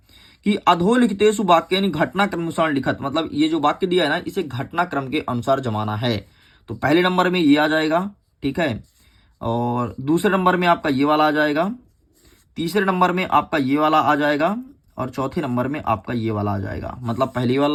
कि अधोलिखितेषु वाक्यानि घटनाक्रम अनुसार लिखत। मतलब ये जो वाक्य दिया है ना, इसे घटनाक्रम के अनुसार जमाना है। तो पहले नंबर में ये आ जाएगा, ठीक है, और दूसरे नंबर में आपका ये वाला आ जाएगा, तीसरे नंबर में आपका ये वाला आ जाएगा, और चौथे नंबर में आपका ये वाला आ जाएगा। मतलब पहली वाला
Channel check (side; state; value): both; identical; correlation 1.00